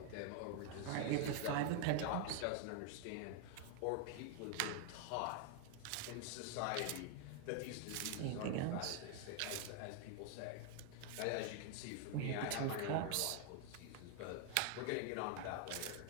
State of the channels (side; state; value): both; different; correlation 0.00